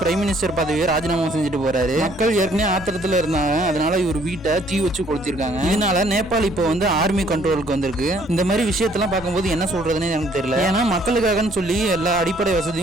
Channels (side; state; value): both; normal; correlation 0.62